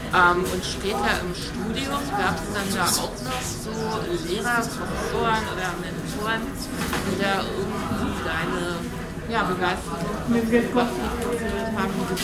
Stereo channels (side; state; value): both; identical; correlation 1.00